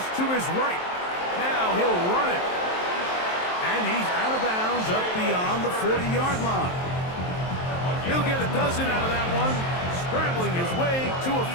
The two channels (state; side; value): late; right; 23 ms